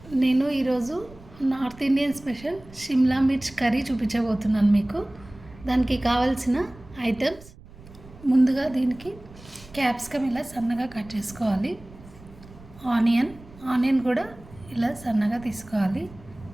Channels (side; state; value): right; noise; rumble, 20 dB below the sound